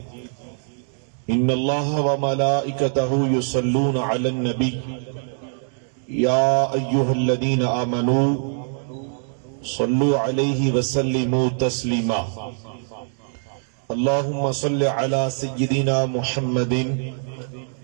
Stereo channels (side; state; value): left; silent; digital silence